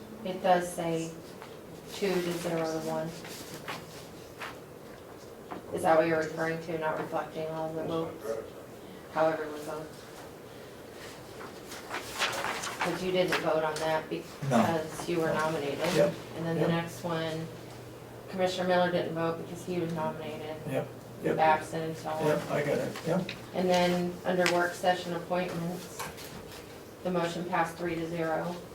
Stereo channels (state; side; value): identical; both; correlation 1.00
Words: it does say 2 to 0 to 1. Is that what you're referring to, not reflecting all the votes? However it was voted? Because you didn't vote on that because you were nominated. Yep. And then the Yep. next one, Commissioner Miller didn't vote because he was nominated. Yep, yep, Babson and so on. yep, I got it, yep. And then under work session appointments, the motion passed 3 to 0.